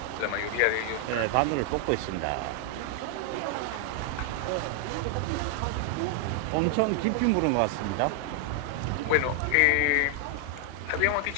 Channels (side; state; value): both; different; correlation 0.00